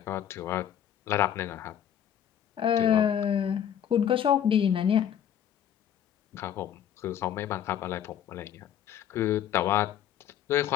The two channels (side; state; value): right; quieter; 9.8 dB